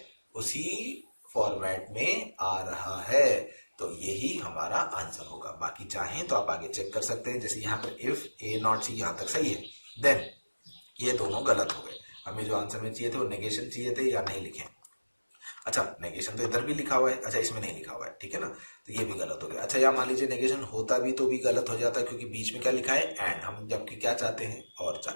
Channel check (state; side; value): inverted; both; correlation -1.00